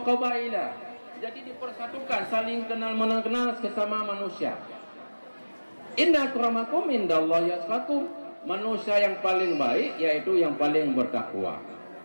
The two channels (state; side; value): inverted; both; correlation -1.00